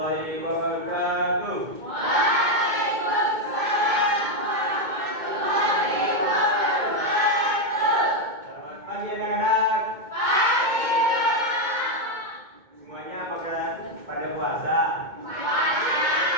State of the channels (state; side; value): late; left; 2.2 ms